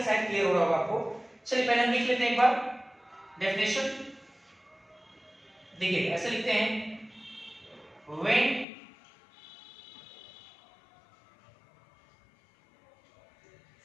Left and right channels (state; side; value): drops out; right; at 8.7 s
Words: शायद क्लियर हो रहा होगा आपको। चलिए पहले हम लिख लेते हैं एक बार डेफिनेशन। देखिए ऐसे लिखते हैं, when